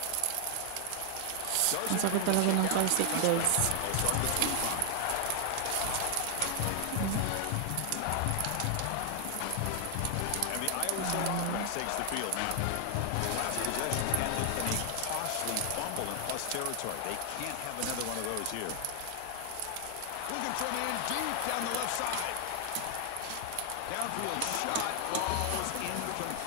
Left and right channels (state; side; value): different; both; correlation 0.00